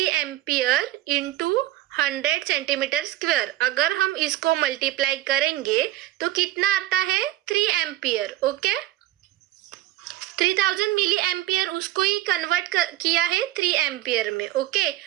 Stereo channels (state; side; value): quieter; left; 15.1 dB